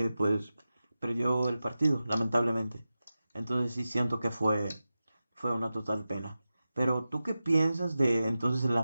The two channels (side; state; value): both; inverted; correlation -0.94